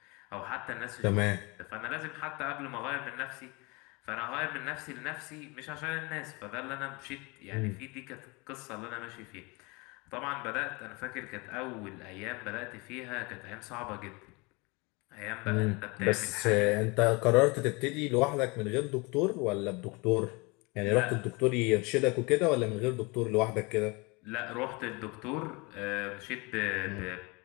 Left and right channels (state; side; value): quieter; right; 27.2 dB